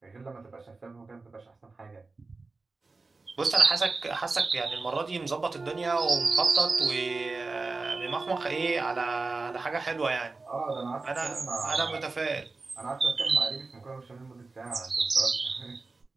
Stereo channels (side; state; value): left; quieter; 3.8 dB